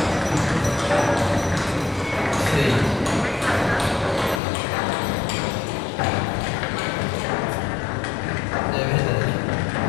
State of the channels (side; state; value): right; drops out; at 4.4 s